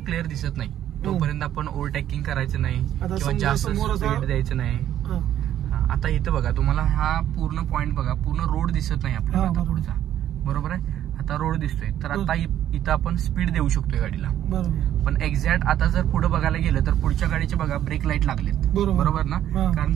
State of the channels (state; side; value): quieter; left; 11.4 dB